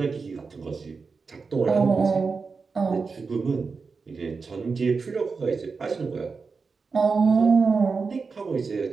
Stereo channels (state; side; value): quieter; left; 4.8 dB